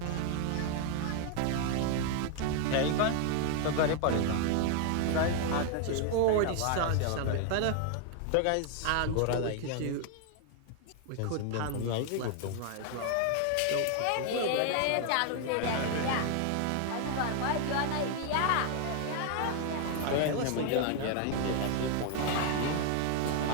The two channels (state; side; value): different; both; correlation 0.00